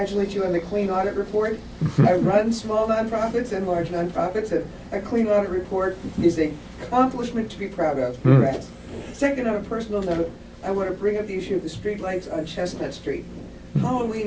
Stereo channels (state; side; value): identical; both; correlation 1.00